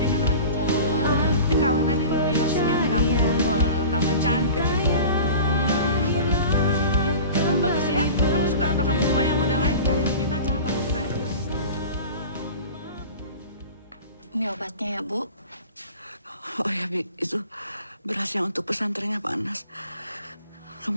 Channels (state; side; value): inverted; both; correlation -0.38